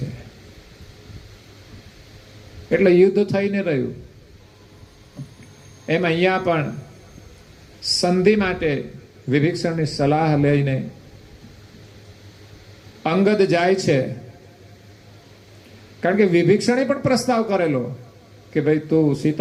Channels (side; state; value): both; identical; correlation 1.00